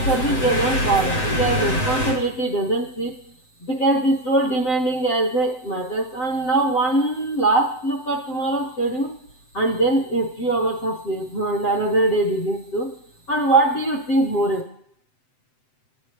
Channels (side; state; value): right; late; 7.8 ms